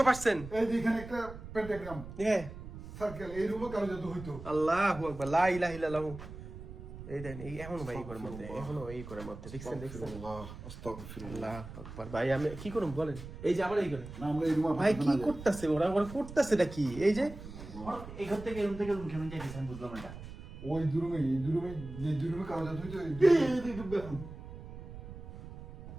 এই যে এখানে একটা পেন্টাগ্রাম হ্যাঁ সার্কেল, এই রুমে কালো জাদু হইতো। আল্লাহু আকবার, লা ইলাহা ইল্লাল্লাহ। এই দেন এই এখনো ভাই এই ঘরের মধ্যে, এখনো এই ঘরের মধ্যে দেখছেন দেখছেন। আস্তাগফিরুল্লাহ। আল্লাহু আকবার ভাই, আমি কি করব বলেন? এই যে আবার এই ঘরে না আমরা এই রুমে ভাই কি করতেছে ওরা, ওরা করতেছেটা কি? এই যে এই ঘর থেকে রুম থেকে রুম কেমন যাইতেছেন বুঝলাম না। ওই দুই রুমে, এই দুই রুমে, এই দুই রুমে কালো জাদু হইতো। এই দুই রুমে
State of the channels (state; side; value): noise; right; rumble, 12 dB below the sound